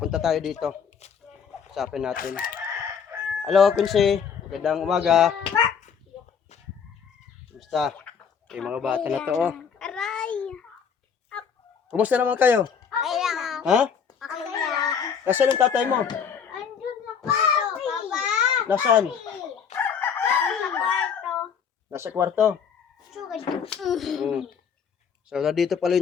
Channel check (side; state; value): right; quieter; 6.9 dB